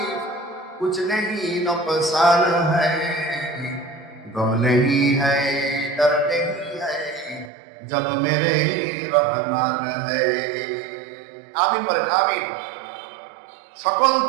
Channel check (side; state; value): left; drops out; at 7.5 s